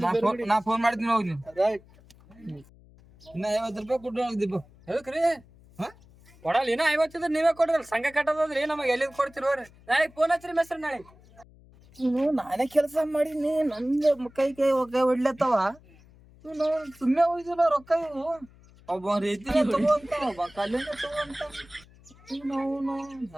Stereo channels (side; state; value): left; noise; hum, 25 dB below the sound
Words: ನಾ ಫೋನ್ ಮಾಡ್ತೀನಿ ಹೋಗಿ ನೀವು. ರೈಟ್. ಇನ್ನ 50 ರೂಪಾಯಿ ಕೊಟ್ಟು ಹೋಗ್ದಿಪ್ಪ. ಎದಕ್ರಿ ಕೊಡಲ್ಲ ಇನ್ನ 50 ನೀವೇ ಕೊಡ್ರಲ್ಲ, ಸಂಘ ಕಟ್ಟದ್ರಿ ನಮಗೆ ಎಲ್ಲಿಂದ ಕೊಡ್ತಿರೋರಿ? ನಾಳೆ ಫೋನ್ ಹಚ್ಚ್ರಿ ಮೇಸ್ತ್ರಿ ನಾಳೆ. ನಾನೇ ಕೆಲಸ ಮಾಡೀನಿ, ನಂದು ಕೈ ಹೊಡ್ಲತ್ತವ ಇವ್ನು ಸುಮ್ಮನೆ ಹೋಯ್ದಿಲ್ಲ ರೊಕ್ಕ ಇವು. ಒಬ್ಬ ರೀತಿನ ತಗೋ ಅಂತ ಒಬ್ಬ ಕಲ್ಲಿನ ತಗೋ ಅಂತ. ಇವ್ನು